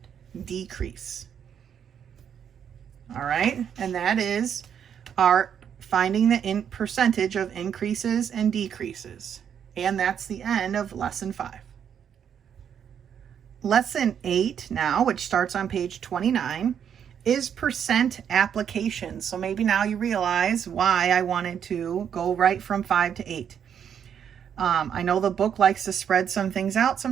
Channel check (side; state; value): left; quieter; 8.4 dB